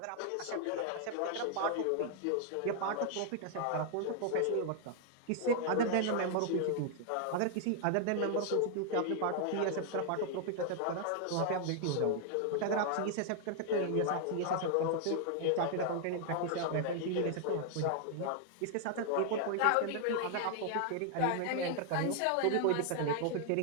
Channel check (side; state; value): both; different; correlation 0.00